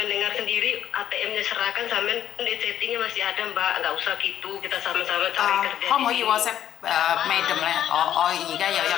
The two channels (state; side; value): quieter; right; 10.7 dB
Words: dengar sendiri ATM-nya serahkan, sampean di chattingnya masih ada, Mbak. Nggak usah gitu, kita sama-sama cari kerja. 可唔可以 WhatsApp Madam 咧？我而家有一